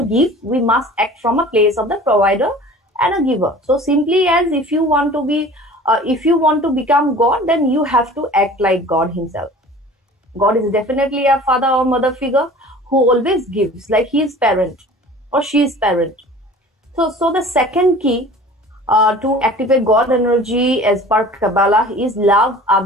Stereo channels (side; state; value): both; normal; correlation 0.43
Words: give. We must act from a place of the provider and a giver. So simply as if you want to become God, then you have to act like God himself. God is definitely a father or mother figure who always gives, like he is parent or she is parent. So the second key to activate God energy as per Kabbalah is love